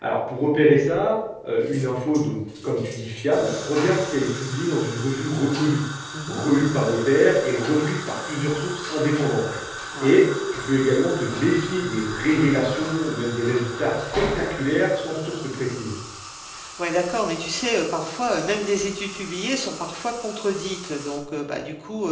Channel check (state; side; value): identical; both; correlation 1.00